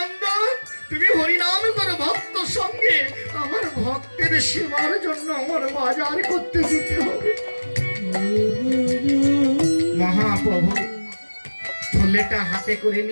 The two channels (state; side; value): inverted; both; correlation -1.00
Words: তুমি হরিনাম করো ভক্ত সঙ্গে, আমার ভক্তের সেবার জন্য আমার বাজার করতে যেতে হবে। মহাপ্রভু থলেটা হাতে করে